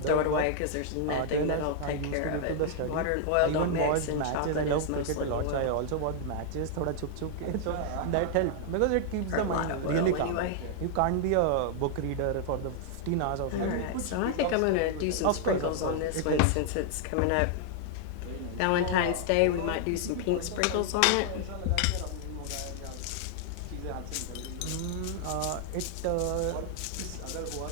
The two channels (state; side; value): different; both; correlation 0.00